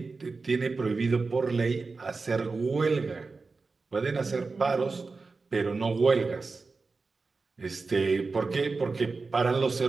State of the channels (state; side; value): quieter; left; 4.1 dB